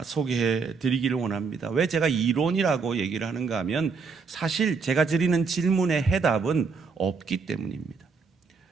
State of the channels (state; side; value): quieter; left; 5.0 dB